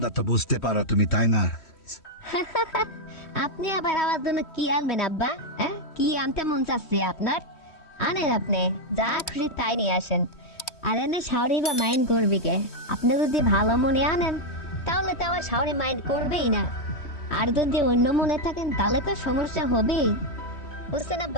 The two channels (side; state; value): right; late; 3.1 ms